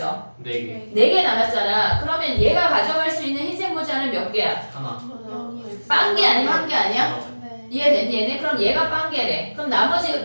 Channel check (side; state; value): both; inverted; correlation -1.00